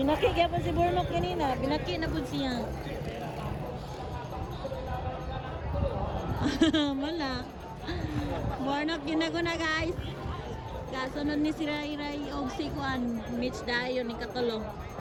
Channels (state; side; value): identical; both; correlation 1.00